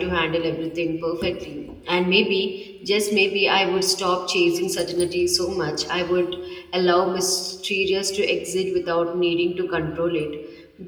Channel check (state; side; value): identical; both; correlation 1.00